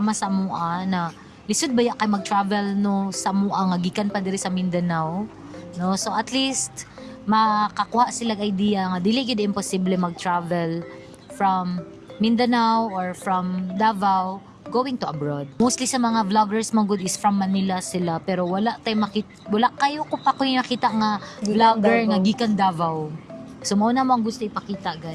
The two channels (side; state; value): both; identical; correlation 1.00